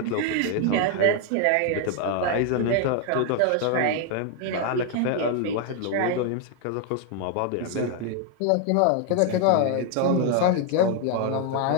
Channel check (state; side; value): different; both; correlation 0.00